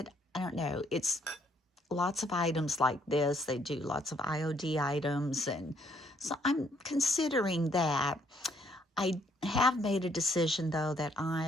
I don't know. It's lots of items like this. They do lots of IOD items. And so I'm considering that. I have made a decision, though, that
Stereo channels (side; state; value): both; normal; correlation 0.68